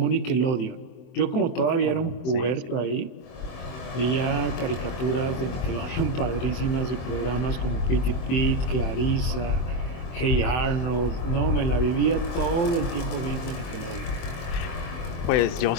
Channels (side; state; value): right; late; 23 ms